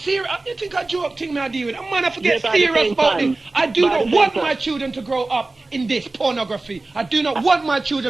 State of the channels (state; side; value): quieter; left; 3.2 dB